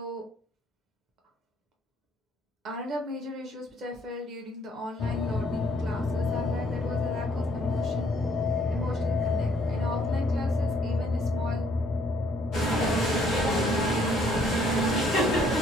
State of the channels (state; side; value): normal; both; correlation 0.65